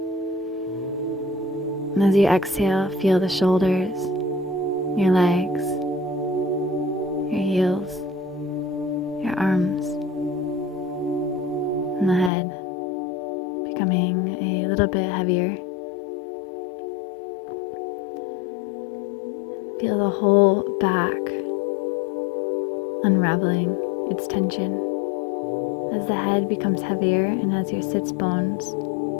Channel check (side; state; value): right; drops out; at 12.3 s